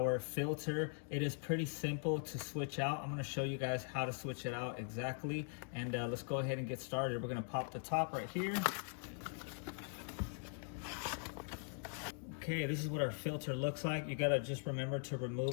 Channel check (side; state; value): right; silent; 50 dB below the other